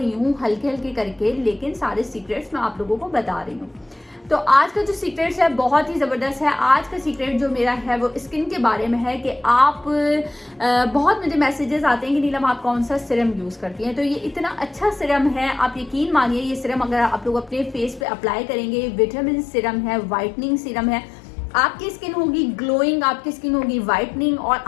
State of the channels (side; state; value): right; drops out; at 18.1 s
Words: हूँ हल्के हल्के करके, लेकिन सारे सीक्रेट्स मैं आप लोगों को बता रही हूँ। तो आज का जो सीक्रेट्स है बहुत ही ज़बरदस्त है। आज का सीक्रेट जो मेरा है वो स्किन के बारे में है कि आप बहुत मुझे मैसेजेस आते हैं कि नीलम आप कौन सा सिरम यूज़ करती हैं। तो ये इतना अच्छा सिरम है, आप यकीन मानिए ये सिरम अगर आप लोग अपने फेस पे अप्लाई करेंगे, विटामिन सिरम है, वाइटनिंग सिरम है, आपकी स्किन होगी ग्लोइंग, आपकी स्किन होगी वाइटनिंग, और